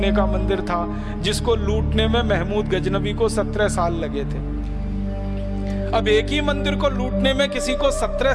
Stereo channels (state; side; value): identical; both; correlation 1.00